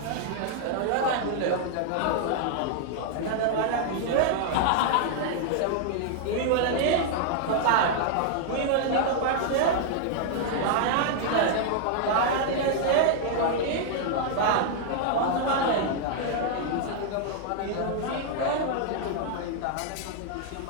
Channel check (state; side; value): different; both; correlation 0.00